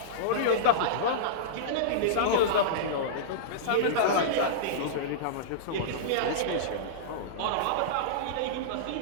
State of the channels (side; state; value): both; different; correlation -0.04